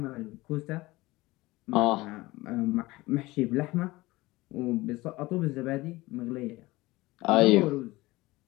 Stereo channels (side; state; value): right; quieter; 20.2 dB